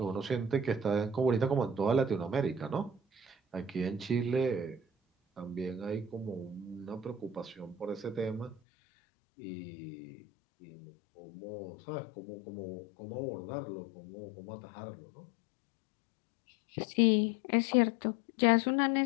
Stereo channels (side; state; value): right; drops out; at 8.6 s